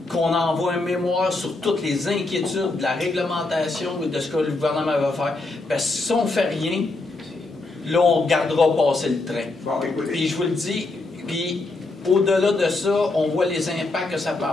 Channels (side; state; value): right; quieter; 3.2 dB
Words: qu'on envoie un mémoire sur toutes les inquiétudes de la réglementation et de ce que le gouvernement va faire. Parce que si on ne fait rien, là, on regardera passer le train. Bon, écoutez. Puis je vous le dis, puis au-delà de ça, on voit les impacts que ça peut